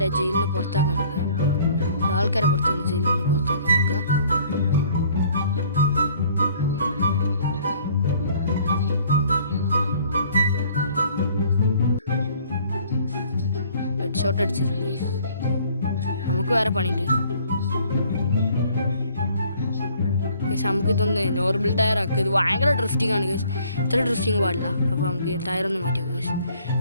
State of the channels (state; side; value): inverted; both; correlation -0.57